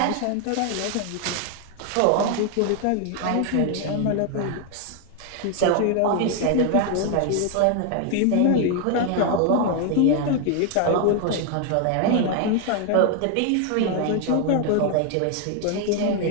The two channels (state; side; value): different; both; correlation 0.00